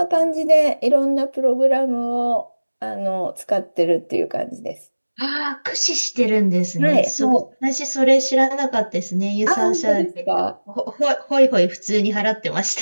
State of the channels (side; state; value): both; inverted; correlation -1.00